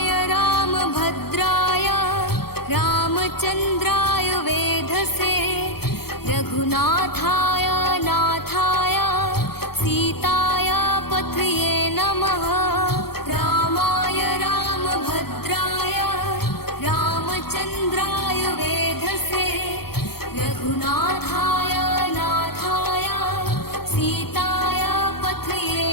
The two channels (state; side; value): late; right; 0.95 ms